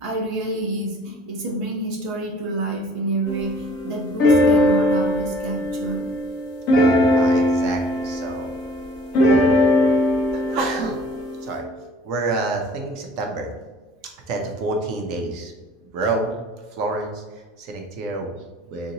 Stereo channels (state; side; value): normal; both; correlation 0.52